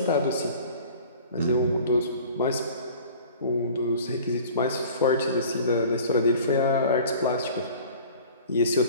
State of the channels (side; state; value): both; inverted; correlation -0.45